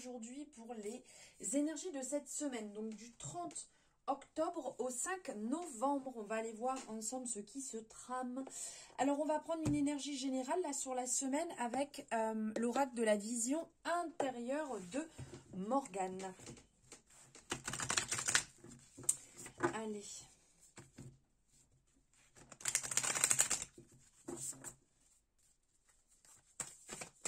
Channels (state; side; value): identical; both; correlation 1.00